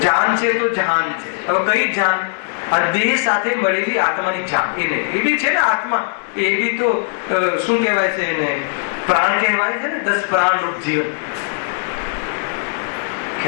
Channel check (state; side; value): silent; right; 66 dB below the other